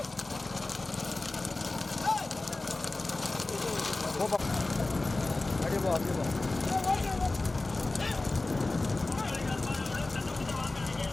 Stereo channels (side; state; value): right; quieter; 3.1 dB